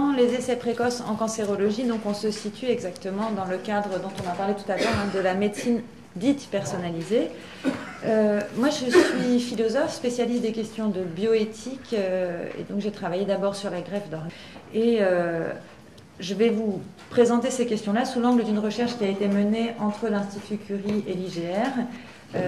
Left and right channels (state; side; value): identical; both; correlation 1.00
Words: les essais précoces en cancérologie. Donc, on se situe exactement dans le cadre dont on a parlé tout à l'heure, de la médecine dite personnalisée. Moi, je suis philosophe, spécialiste des questions de bioéthique, et donc j'ai travaillé d'abord sur la greffe d'organes. Et je vais vous présenter ces questions-là sous l'angle d'une recherche qui a été menée entre l'Institut Curie et l'IGR,